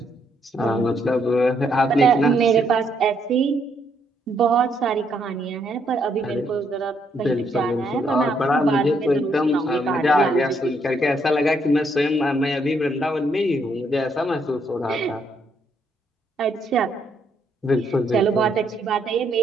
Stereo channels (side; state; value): both; normal; correlation 0.73